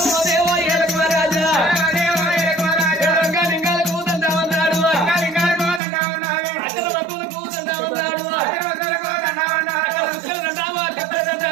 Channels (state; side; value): drops out; left; at 5.8 s